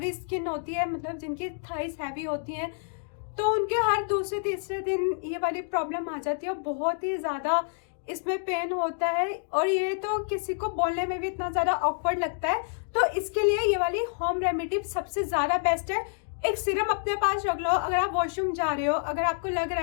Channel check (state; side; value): silent; right; digital silence